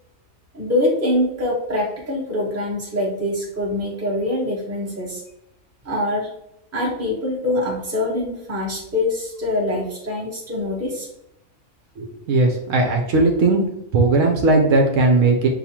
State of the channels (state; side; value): normal; both; correlation -0.09